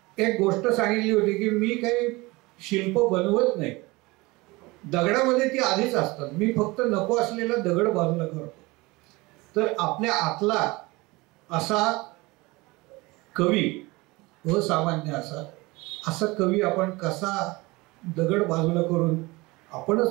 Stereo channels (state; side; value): quieter; left; 22.8 dB